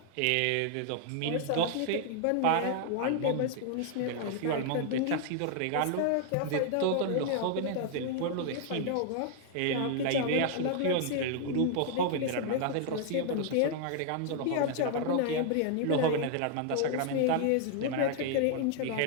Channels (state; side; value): different; both; correlation 0.00